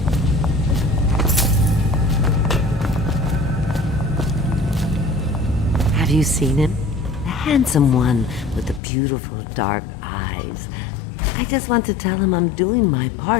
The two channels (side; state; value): right; drops out; at 8.8 s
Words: Have you seen him? The handsome one with the beautiful dark eyes. I just want to tell him I'm doing my